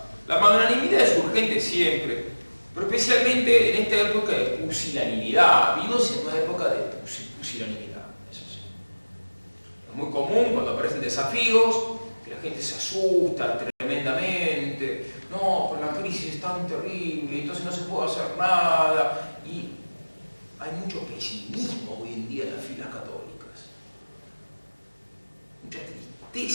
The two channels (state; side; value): inverted; both; correlation -1.00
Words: La magnanimidad es urgente siempre, pero especialmente en esta época de pusilanimidad. Vivimos en una época de pusilanimidad. Es muy común cuando aparecen desafíos, que la gente se asusta tremendamente. No, pues la crisis es tan terrible, entonces no se puede hacer nada. Y hay mucho pesimismo hoy en día en las filas católicas. Mucha